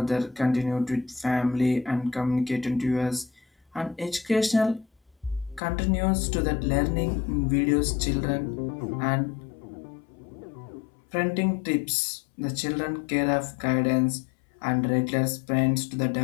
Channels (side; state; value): right; drops out; at 5.6 s